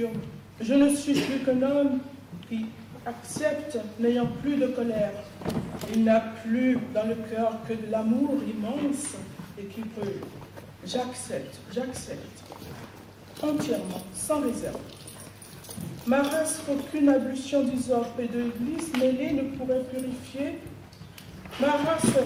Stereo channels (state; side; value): identical; both; correlation 1.00